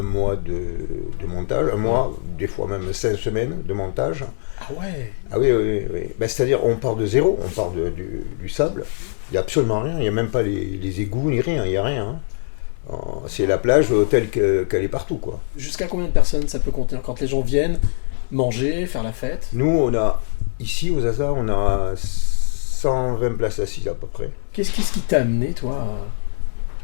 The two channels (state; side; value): silent; right; 61 dB below the other